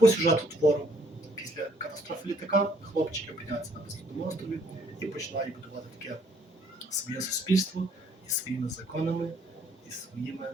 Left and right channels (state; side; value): normal; both; correlation 0.64